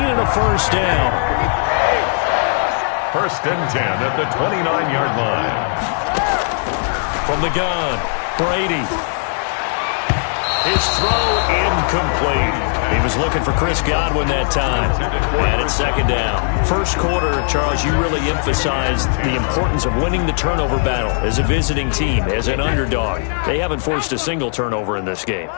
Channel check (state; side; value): silent; right; 67 dB below the other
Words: a first down. First and 10 at the 29-yard line. From the gun, Brady. His throw incomplete. He was looking for Chris Godwin that time. And it's second down. First quarter, Charles, you really emphasized the importance of winning the turnover battle as a visiting team, as an underdog. They haven't forced a single turnover in this game.